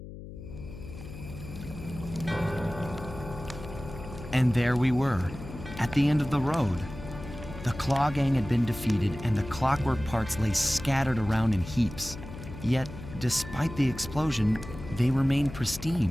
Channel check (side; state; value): left; noise; hum, 12 dB below the sound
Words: And there we were, at the end of the road. The Klaww Gang had been defeated and the Clockwerk parts lay scattered around in heaps. Yet, despite the explosion, they remained